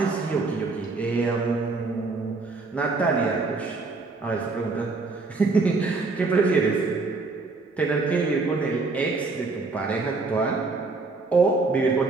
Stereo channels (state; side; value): quieter; left; 3.8 dB